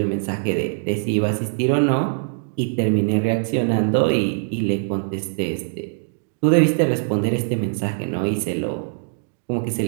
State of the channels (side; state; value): left; silent; 61 dB below the other